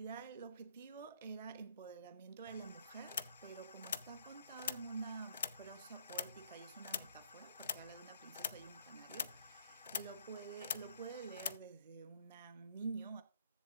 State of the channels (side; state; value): both; inverted; correlation -0.65